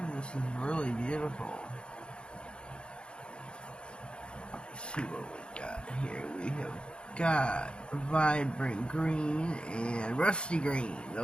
This is really beautiful. Let's see what we got here. We have got vibrant green and rusty green.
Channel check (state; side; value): late; right; 0.055 ms